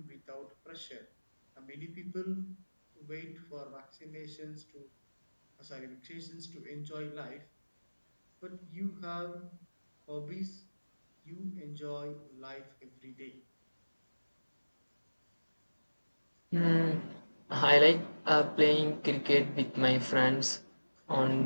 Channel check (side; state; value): both; inverted; correlation -1.00